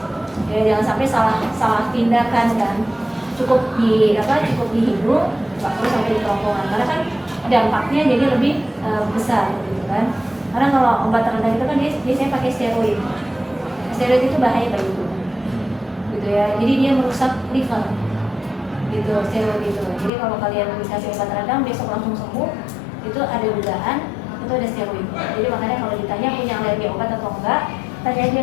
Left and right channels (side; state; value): right; drops out; at 20.1 s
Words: Ya, jangan sampai salah tindakan kan. Cukup di hidung, nggak perlu sampai di kerongkongan. Karena kan dampaknya jadi lebih besar gitu kan. Karena kalau obat terendah itu kan dia biasanya pakai steroid. Steroid itu bahaya bagi tubuh. Gitu ya. Jadi dia merusak liver. Gitu, steroid itu. Jadi kalau kalian dikasih obat radang besok langsung sembuh, itu ada dugaan itu ada steroid. Jadi makanya kalau ditanya punya alergi obat atau enggak, tanya aja